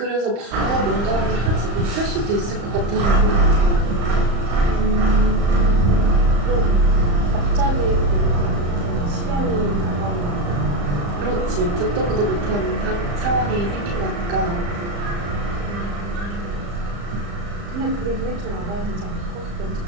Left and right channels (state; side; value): late; left; 35 ms